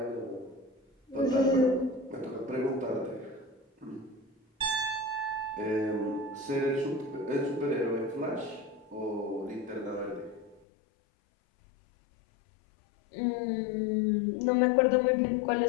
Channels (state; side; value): drops out; right; at 10.6 s